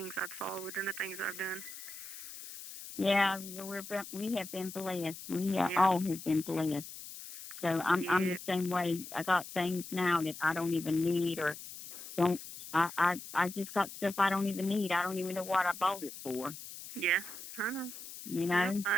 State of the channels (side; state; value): left; noise; hiss, 12 dB below the sound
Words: I've saw within the things I've done. Yeah, we have been blessed. We all have been blessed. So I'm the same way. I got things now that I don't even need or don't. I just got stuff I don't even need. I don't even know what I bought it for. Yeah, I know. You know? Yeah,